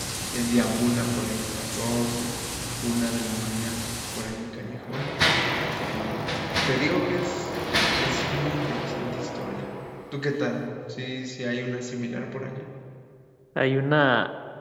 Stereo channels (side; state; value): both; identical; correlation 1.00